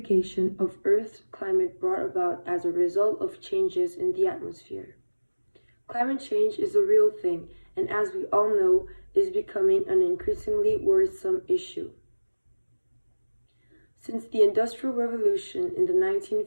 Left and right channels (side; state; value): both; inverted; correlation -1.00